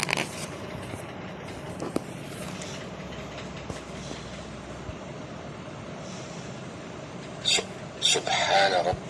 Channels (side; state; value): both; identical; correlation 1.00